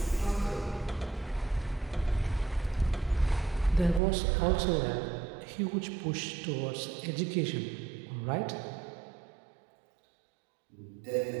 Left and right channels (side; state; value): left; drops out; at 4.0 s